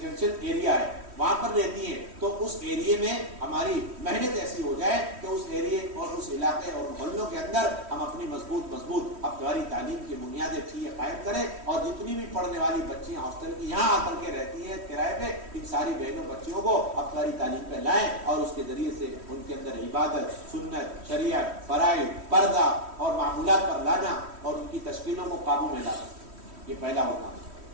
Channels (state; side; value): late; left; 3.1 ms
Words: ایریا ہے وہاں پر رہتی ہیں, تو اس ایریے میں ہماری محنت ایسی ہو جائے کہ اس ایریے اور اس علاقے اور محلوں کے اندر ہم اپنی مضبوط ہفتہ واری تعلیم کی بنیادیں چیزیں قائم کریں. اور جتنی بھی پڑھنے والی بچیاں ہاسٹل کی یہاں آ کر کے رہتی ہیں کرائے پہ, ان ساری بہنوں بچیوں کو ہفتہ واری تعلیم پہ لائیں, اور اس کے ذریعے سے ان کے اندر عبادت, سنت, شریعت, فرائض, پردہ اور معمولات پر لانا, اور ان کی تشکیلوں کو قابو میں لانا. یہ پہلا ہوگا.